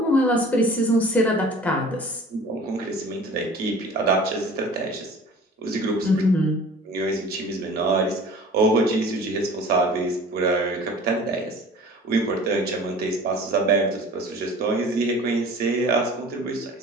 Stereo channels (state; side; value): normal; both; correlation 0.44